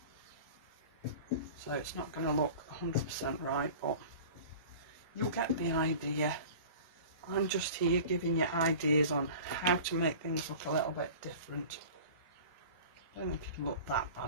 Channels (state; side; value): inverted; both; correlation -0.39